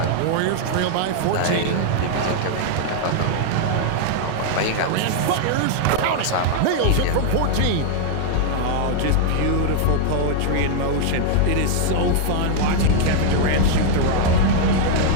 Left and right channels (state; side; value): different; both; correlation 0.00